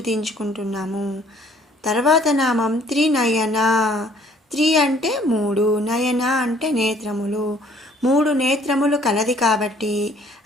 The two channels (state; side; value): normal; both; correlation 0.59